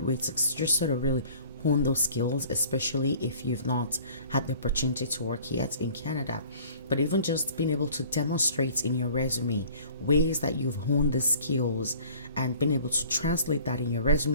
way to just sort of really hone those skills, especially if you've not had the opportunity to work yet in Canada. But even just being able to demonstrate in your resume ways that you've honed the skills and being able to translate that in your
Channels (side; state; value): both; inverted; correlation -0.50